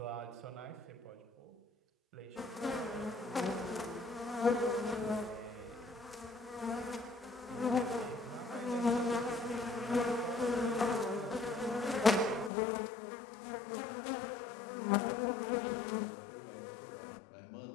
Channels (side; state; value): right; drops out; at 12.5 s